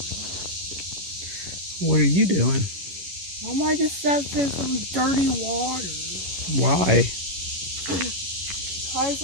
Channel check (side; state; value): left; late; 11 ms